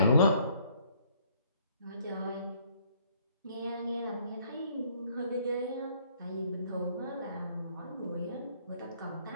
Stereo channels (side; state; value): both; inverted; correlation -0.63